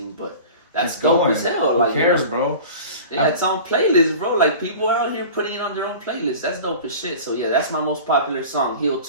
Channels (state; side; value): inverted; both; correlation -0.38